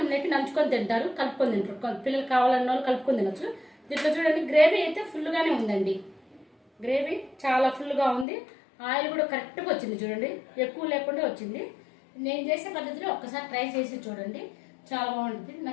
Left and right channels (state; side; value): drops out; right; at 8.2 s